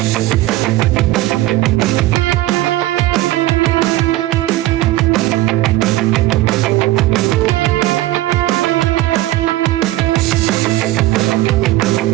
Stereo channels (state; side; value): quieter; left; 16.7 dB